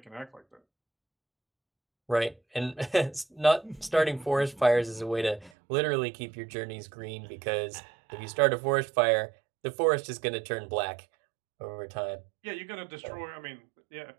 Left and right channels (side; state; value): left; drops out; at 5.5 s